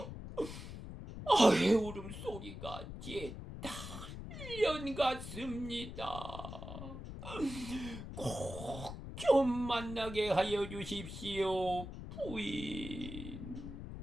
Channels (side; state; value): left; noise; rumble, 9 dB below the sound